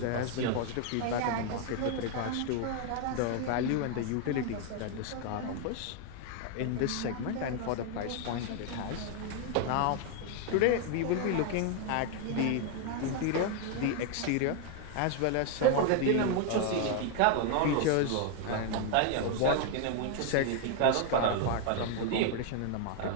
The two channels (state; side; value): different; both; correlation 0.00